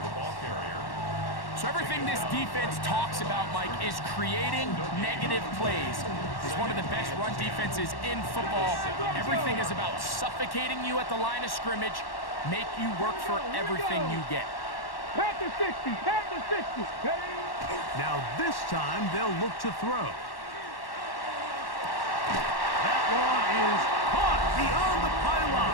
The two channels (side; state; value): right; late; 1.1 ms